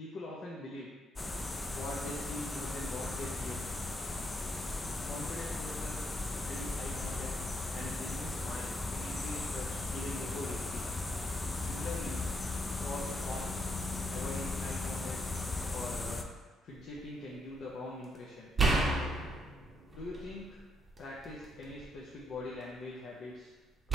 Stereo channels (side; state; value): both; normal; correlation 0.77